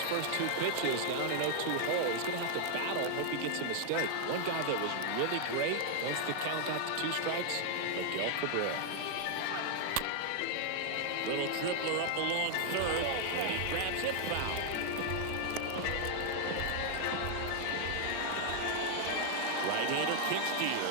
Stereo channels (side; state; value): both; different; correlation 0.00